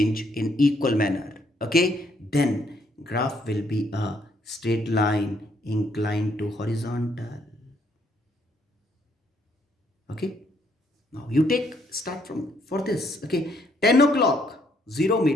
in equal manner, okay, then graph will be a straight line inclined to horizontal. Okay, now you take start from for this, okay, 10 o'clock 0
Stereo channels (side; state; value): both; normal; correlation 0.70